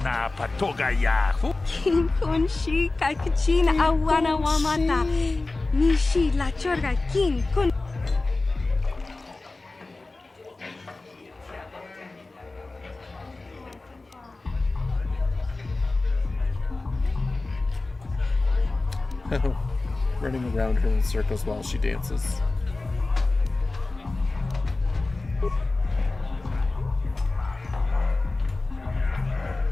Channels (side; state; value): right; quieter; 3.3 dB